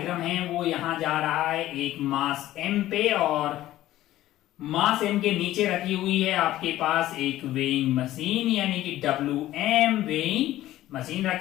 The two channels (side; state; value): right; quieter; 14.6 dB